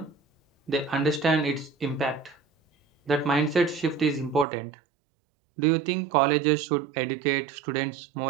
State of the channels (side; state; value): left; drops out; at 4.5 s